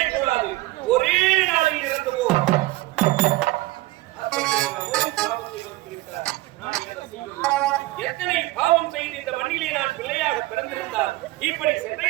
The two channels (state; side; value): quieter; left; 19.3 dB